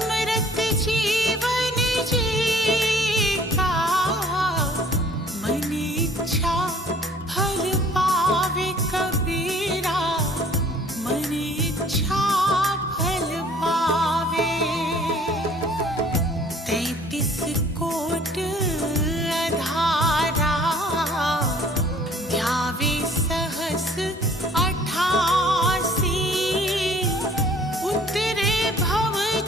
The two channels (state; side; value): normal; both; correlation 0.54